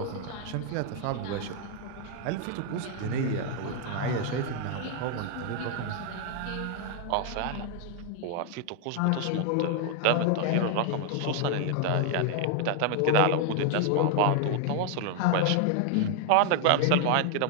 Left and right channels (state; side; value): different; both; correlation 0.00